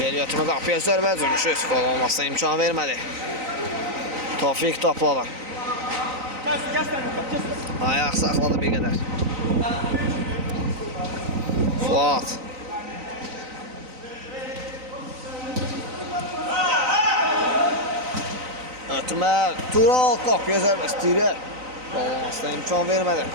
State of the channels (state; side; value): late; left; 3.9 ms